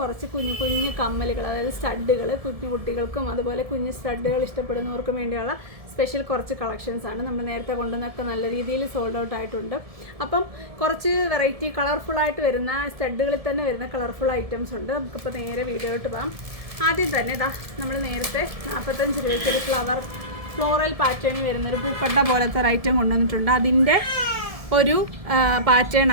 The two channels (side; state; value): left; late; 1.7 ms